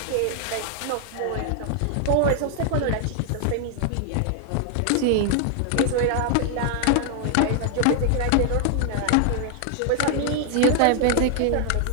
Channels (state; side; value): different; both; correlation 0.00